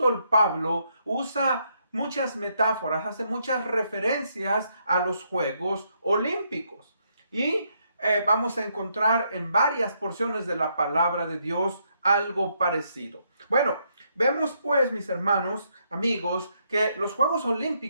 Pablo, usa muchas metáforas, hace muchas referencias a los Juegos Olímpicos. Y vamos a encontrar en varias porciones de la palabra de Dios algo parecido. Bueno, vemos pues, mis hermanos, amigos, que los Juegos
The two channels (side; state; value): both; inverted; correlation -0.75